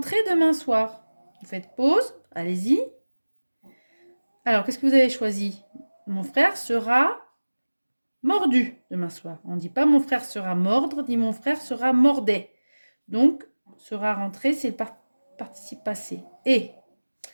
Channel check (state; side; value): inverted; both; correlation -1.00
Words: demain soir. Vous faites pause, allez-y. Alors, qu'est-ce que vous avez choisi? Mon frère sera mordu demain soir. On ne dit pas mon frère sera mordre, dit mon frère sera mordait. Donc, sera rentré, c'est le participe passé. Et